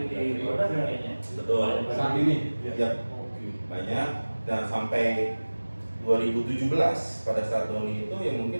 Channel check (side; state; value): both; inverted; correlation -1.00